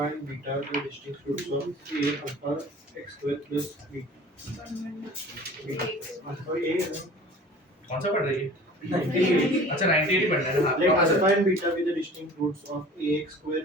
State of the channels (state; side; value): normal; both; correlation 0.44